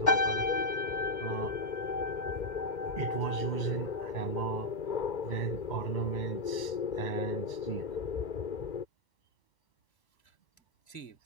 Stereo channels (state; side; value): late; right; 2.1 ms